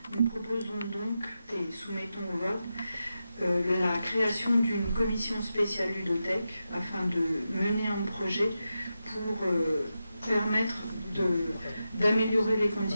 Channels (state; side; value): inverted; both; correlation -0.90